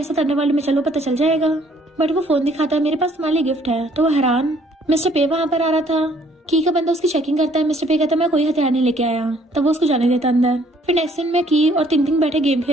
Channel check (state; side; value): normal; both; correlation 0.62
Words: साथ अंडरवर्ल्ड में चलो, पता चल जाएगा। बट वो फोन दिखाता है मेरे पास तुम्हारे लिए गिफ्ट है। तो वो हैरान। मिस्टर पे वहाँ पर आ रहा था। की का बंदा उसकी चेकिंग करता है। मिस्टर पे कहता है मैं कोई हथियार नहीं लेके आया, तब वो उसको जाने देता अंदर। फिर नेक्स्ट दिन में की और टिंग बैठे गेम